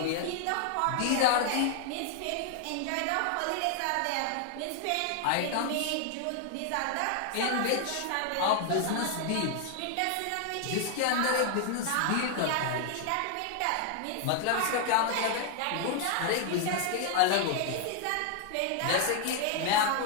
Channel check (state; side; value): different; both; correlation 0.00